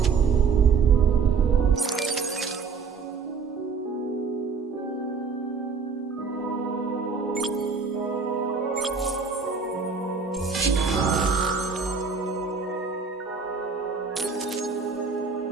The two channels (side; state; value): left; quieter; 5.2 dB